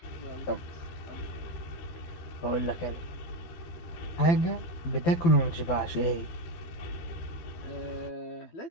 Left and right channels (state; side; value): late; right; 12 ms